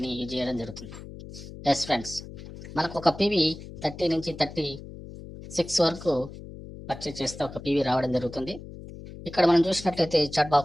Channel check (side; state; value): left; noise; hum, 14 dB below the sound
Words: యూజ్ చేయడం జరుగుతుంది. ఎస్ ఫ్రెండ్స్, మనకు ఒక PV 30 నుంచి 36 వరకు పర్చేజ్ చేస్తే ఒక PV రావడం జరుగుతుంది. ఇక్కడ మనం చూసినట్లయితే చాట్